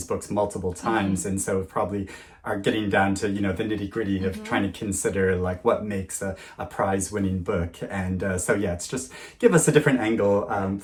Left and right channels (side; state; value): both; identical; correlation 1.00